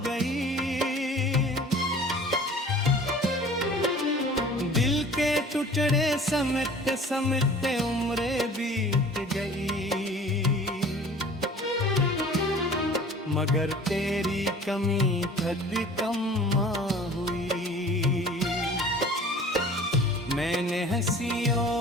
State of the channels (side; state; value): both; normal; correlation 0.45